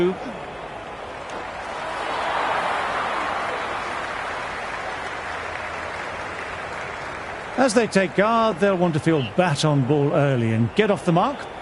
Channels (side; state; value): both; identical; correlation 1.00